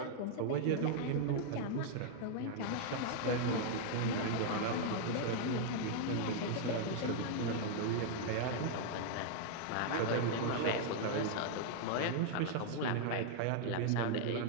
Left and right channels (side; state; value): both; different; correlation 0.00